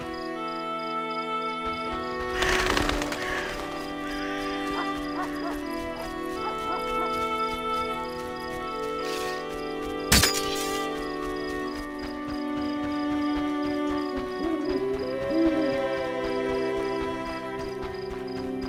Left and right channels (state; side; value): identical; both; correlation 1.00